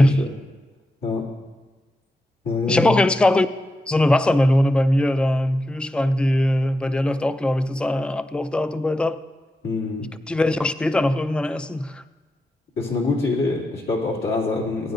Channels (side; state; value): both; normal; correlation 0.88